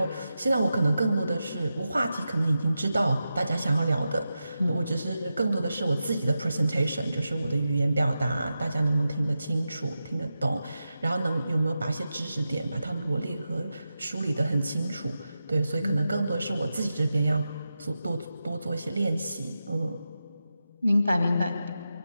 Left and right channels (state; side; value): inverted; both; correlation -0.90